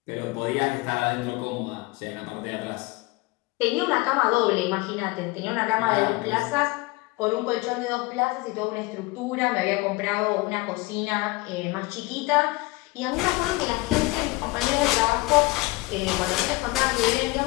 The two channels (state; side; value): quieter; right; 22.9 dB